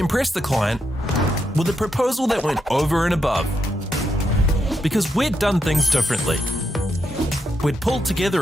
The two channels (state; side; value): normal; both; correlation 0.82